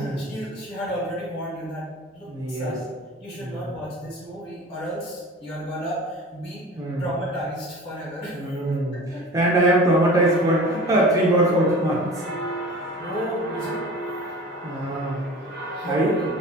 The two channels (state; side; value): normal; both; correlation 0.39